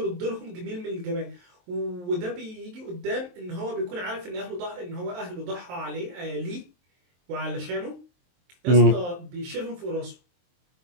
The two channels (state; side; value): late; left; 23 ms